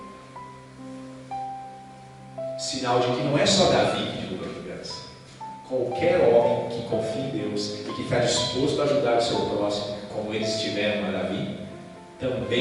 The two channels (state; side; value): identical; both; correlation 1.00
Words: Sinal de que não é só Davi que derruba gigantes. Qualquer homem que confia em Deus e que está disposto a ajudar o seu próximo, como eles tiveram a Davi,